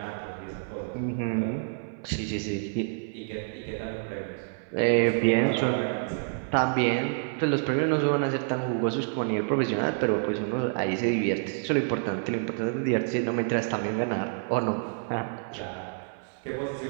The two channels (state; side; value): silent; left; 59 dB below the other